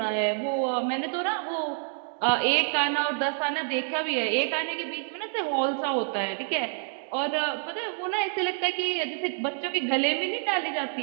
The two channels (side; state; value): left; silent; 57 dB below the other